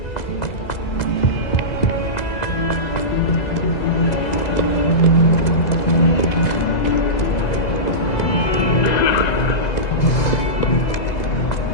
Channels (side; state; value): right; late; 2.0 ms